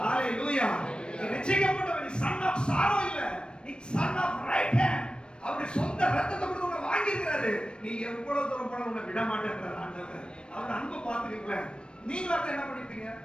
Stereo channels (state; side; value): late; right; 0.054 ms